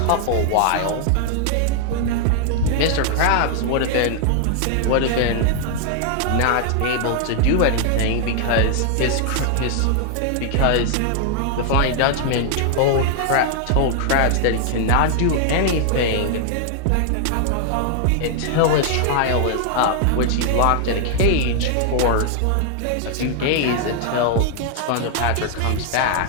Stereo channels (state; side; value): different; both; correlation 0.00